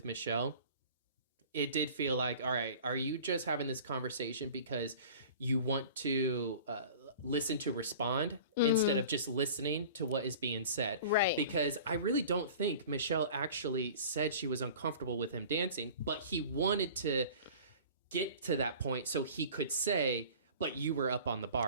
Michelle, it did feel like, all right, are you just having this conversation because you want to listen to respond instead of just listening to what is being said? Right. Because I really don't think Michelle actually said she was uncomfortable with him dancing, but he wanted to get to that point so he could say, but you were up on the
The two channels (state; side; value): inverted; both; correlation -0.42